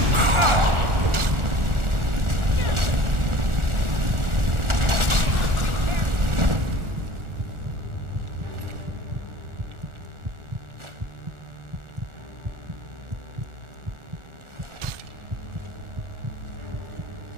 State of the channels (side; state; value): left; late; 1.4 ms